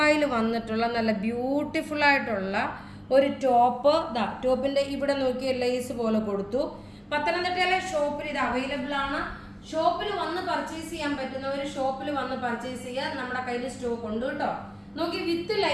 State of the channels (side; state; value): both; identical; correlation 1.00